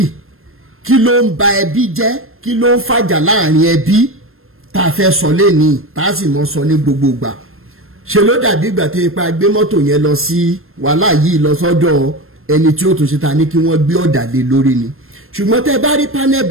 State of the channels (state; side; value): late; left; 0.61 ms